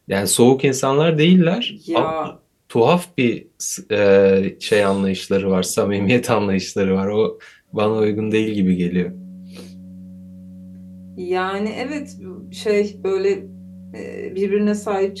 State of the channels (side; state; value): both; identical; correlation 1.00